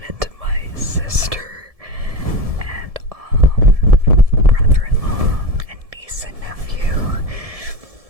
into my sister and brother-in-law and niece and nephew,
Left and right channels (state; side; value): late; left; 1.7 ms